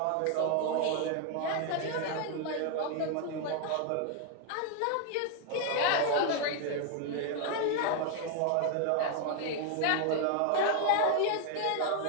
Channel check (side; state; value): both; different; correlation 0.00